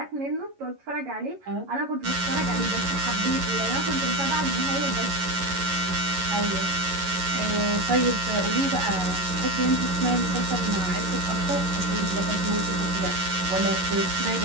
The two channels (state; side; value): late; left; 11 ms